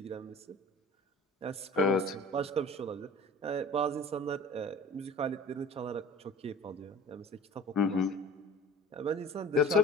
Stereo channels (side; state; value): both; normal; correlation 0.42